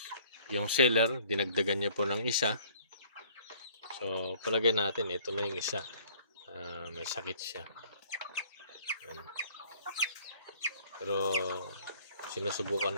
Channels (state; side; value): inverted; both; correlation -0.57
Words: yung seller, dinagdagan niya po ng isa. So palagay natin, ito na yung isa. May sakit siya. Yan. Pero sinusubukan